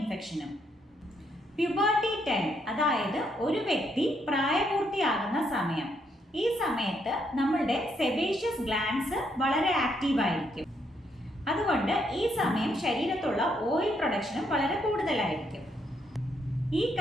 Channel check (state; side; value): normal; both; correlation 0.75